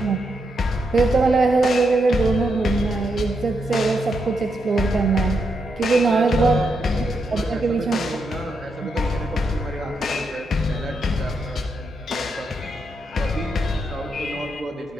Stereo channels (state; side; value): normal; both; correlation 0.82